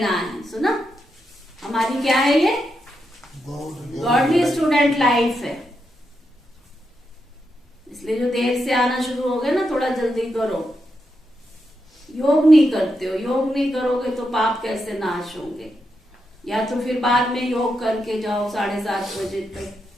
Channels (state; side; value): normal; both; correlation 0.84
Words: है। सुना, हमारी क्या है ये गॉडली स्टूडेंट लाइफ है। इसलिए जो देर से आना शुरू हो गया ना, थोड़ा जल्दी करो। योग नहीं करते हो, योग नहीं करोगे तो पाप कैसे नाश होंगे? या तो फिर बाद में योग करके जाओ 7:30 बजे तक।